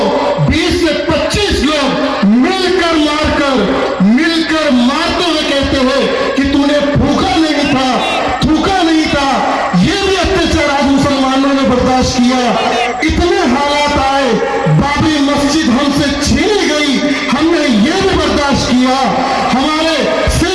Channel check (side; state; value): right; noise; hum, 23 dB below the sound